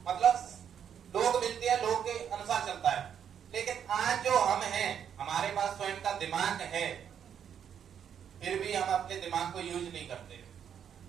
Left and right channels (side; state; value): left; quieter; 8.5 dB